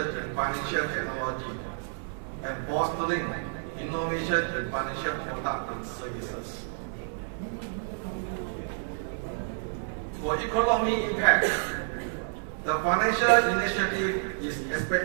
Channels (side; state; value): left; silent; 57 dB below the other